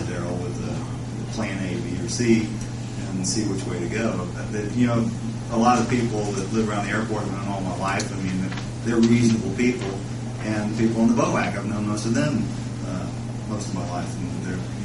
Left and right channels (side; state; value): both; identical; correlation 1.00